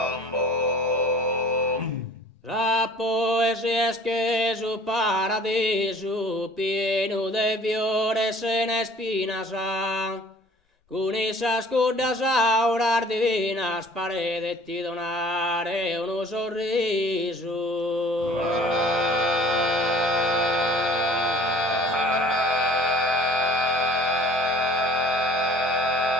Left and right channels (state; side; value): normal; both; correlation 0.50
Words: la poesia es que su para paradiso pieno de fiores en espinas, con esas cordas auras divinas paredes ti donare uno sorriso.